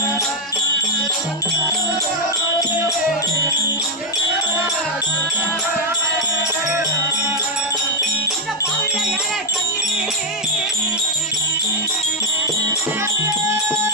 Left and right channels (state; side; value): normal; both; correlation 0.00